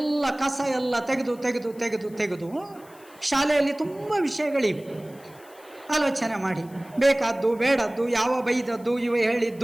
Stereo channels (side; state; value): left; noise; hiss, 26 dB below the sound